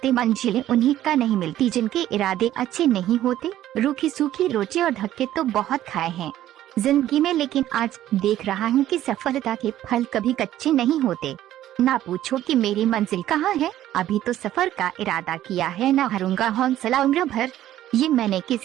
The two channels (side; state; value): left; quieter; 13.0 dB